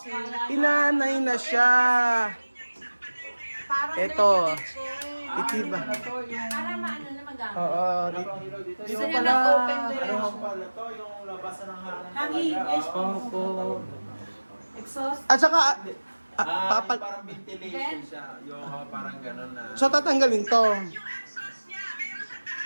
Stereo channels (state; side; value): inverted; both; correlation -1.00